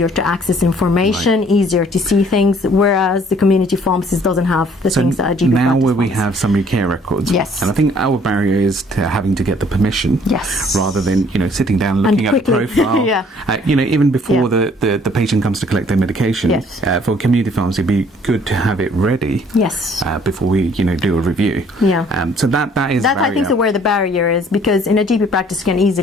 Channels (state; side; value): normal; both; correlation 0.59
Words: to access information, easier to see things, whereas the community pharmacist doesn't have the things that a GP now practice where we pharmacist. have summary care records, Yes. and I think our barrier is to having to get the permission, Yes. rather than sitting down and looking at the profile. Yeah. Even before the patient comes to collect their medication. Yes. For community pharmacy, it'd be good to have it ready. Yes. Before we do a review. Yeah. So that is That a barrier. I think is where the barrier is, because in a GP practice you can